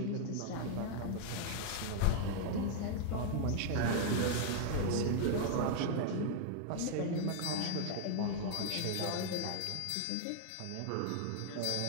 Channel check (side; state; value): both; different; correlation -0.01